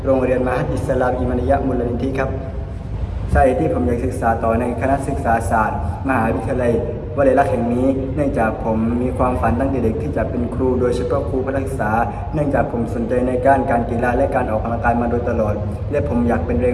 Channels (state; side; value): identical; both; correlation 1.00